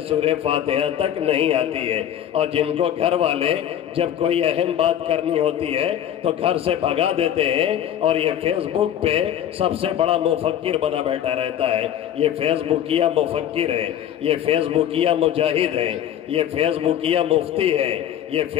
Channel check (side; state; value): right; quieter; 10.4 dB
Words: سورہ فاتحہ تک نہیں آتی ہے اور جن کو گھر والے جب کوئی اہم بات کرنی ہوتی ہے تو گھر سے بھگا دیتے ہیں اور یہ فیس بک پہ سب سے بڑا مفکر بنا بیٹھا رہتا ہے۔ یہ فیس بکیا مفکر ہے، یہ فیس بکیا مجاہد ہے، یہ فیس بکیا مفتی ہے، یہ